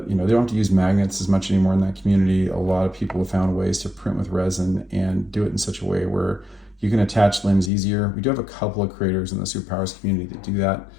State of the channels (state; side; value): drops out; right; at 7.7 s